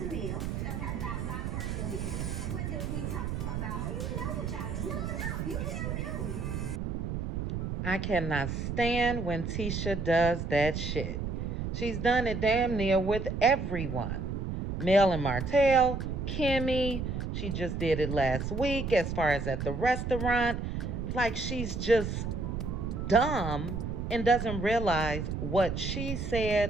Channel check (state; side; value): noise; right; rumble, 3 dB below the sound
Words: me about my personal business. What did we talk about? You know what y'all do. No, you tell me. I cannot stand when Tisha does that shit. She's done it damn near with everyone. Mel and Martell, Kimmy, she just did it last week as far as at the restaurant. Like she's just dumb and doesn't realize what she